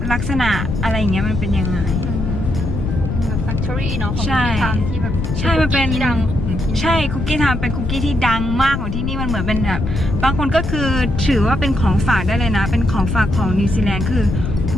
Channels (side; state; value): left; noise; rumble, 3 dB below the sound